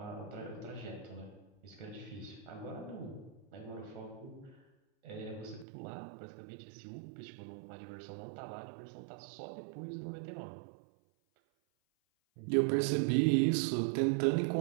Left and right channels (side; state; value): left; drops out; at 5.7 s